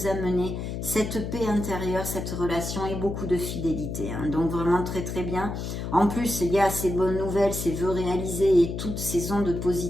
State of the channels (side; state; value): left; noise; hum, 5 dB below the sound